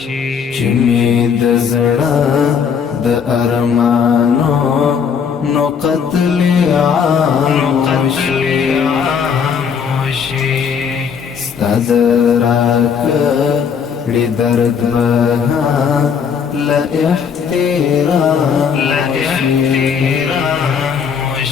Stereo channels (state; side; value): quieter; right; 6.8 dB